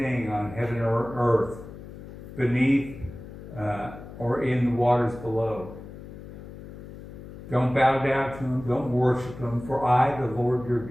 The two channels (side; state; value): left; noise; hum, 14 dB below the sound